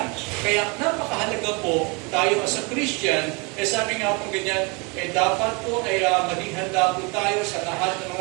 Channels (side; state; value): left; quieter; 29.8 dB